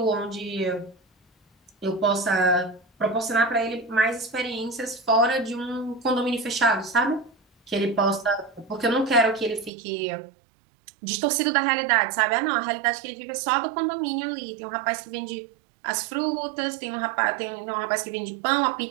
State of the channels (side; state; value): left; drops out; at 9.7 s